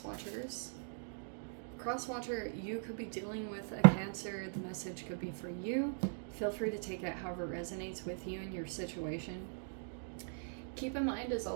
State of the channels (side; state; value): left; silent; digital silence